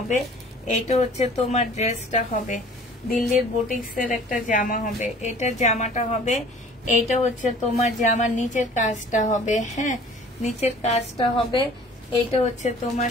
এটা হচ্ছে তোমার ড্রেসটা হবে। দিল্লির বুটিক্সের একটা জামা হবে, এটা জামাটা হবে। এইটা হচ্ছে তোমার জামার নিচের কাজটা হবে। হ্যাঁ, নিচের কাজটা হবে। এইটা হচ্ছে তোমার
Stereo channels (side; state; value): both; normal; correlation 0.49